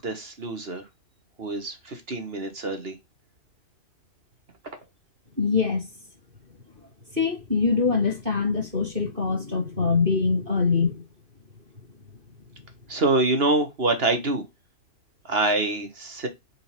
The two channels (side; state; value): left; late; 2.9 ms